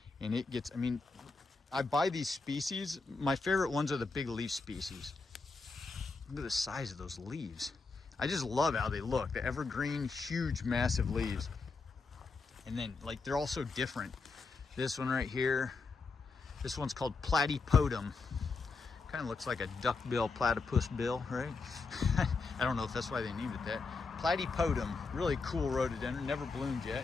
And it gets, I mean, I buy these species. My favorite ones are the big leaf species. Look at the size of those leaves. I just love how they look. The evergreen, huge, massive leaves. And then, like, they're also different. This one right here, this one's called Platypodum. Kind of looks like a duckbill, platypus bill, right? I don't know if that's why they named it that. Platypodum, really cool rhododendron, never bloomed yet.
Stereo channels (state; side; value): quieter; right; 4.2 dB